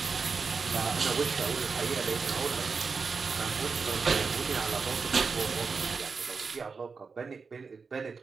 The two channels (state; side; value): quieter; left; 5.0 dB